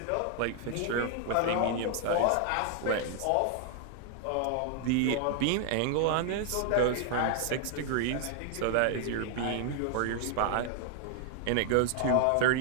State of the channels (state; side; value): different; both; correlation 0.00